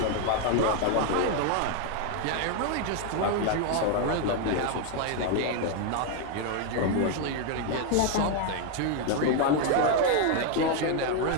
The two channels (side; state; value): both; different; correlation 0.01